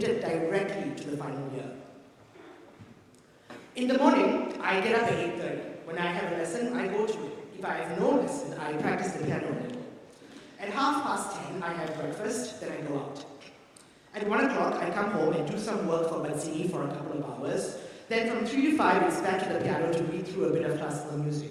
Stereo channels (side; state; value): both; identical; correlation 1.00